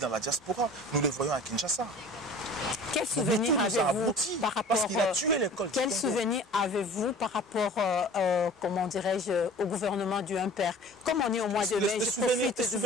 la diaspora, nous le voyons à Kinshasa. Quel souvenir avez-vous par rapport comment dirais-je, au gouvernement du Impère? Comme on est au mois de mai, je profite de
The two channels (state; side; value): normal; both; correlation 0.44